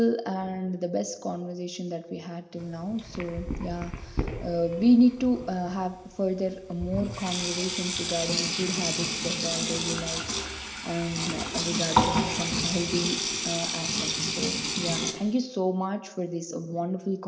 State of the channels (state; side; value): identical; both; correlation 1.00